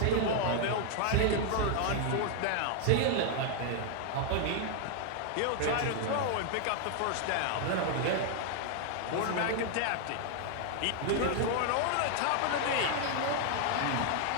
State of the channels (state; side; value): different; both; correlation 0.00